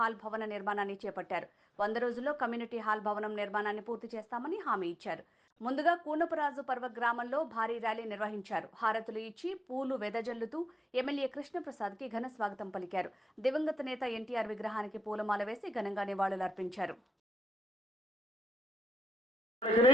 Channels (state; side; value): normal; both; correlation 0.87